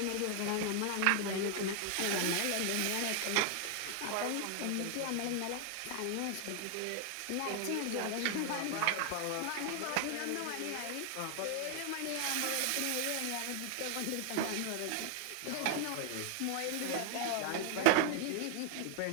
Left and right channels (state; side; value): different; both; correlation 0.00